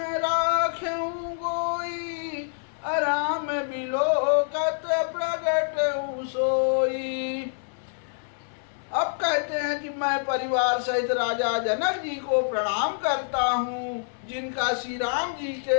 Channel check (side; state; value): right; silent; 60 dB below the other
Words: राखें गोई अराम बिलोकत प्रगट सोई। अब कहते हैं कि मैं परिवार सहित राजा जनक जी को प्रणाम करता हूँ जिनका श्री राम जी